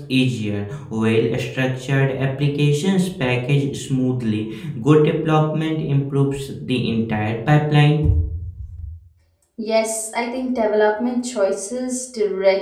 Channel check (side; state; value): both; identical; correlation 1.00